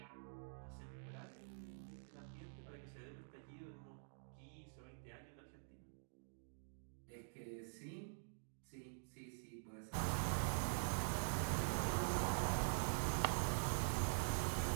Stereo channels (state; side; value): silent; left; digital silence